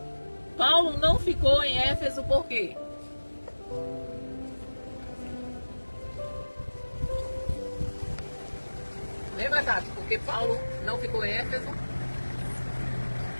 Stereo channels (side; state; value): both; inverted; correlation -1.00